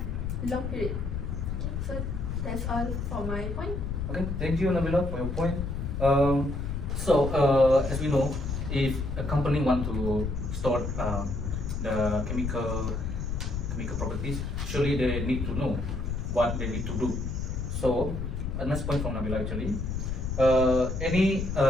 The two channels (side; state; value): left; noise; rumble, 3 dB below the sound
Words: long period. Okay, so that's all for my point. Okay, thank you, Nabila, for your point. As we know, if a company want to store the chemical properties, surely they need to know what they need to do. So, a nice point from Nabila actually. Any